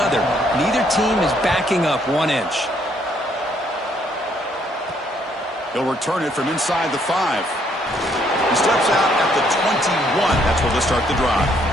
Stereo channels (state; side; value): normal; both; correlation 0.68